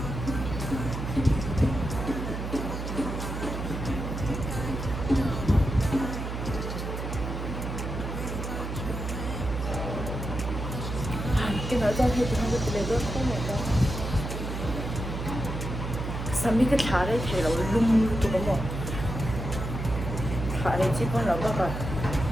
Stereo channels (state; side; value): noise; right; hum, 5 dB below the sound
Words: Cái nói ra thì không được lấy được không mà đâu. Sao mấy cái thả đấy thì nó lung tụi nó thả đấy chỉ còn là cái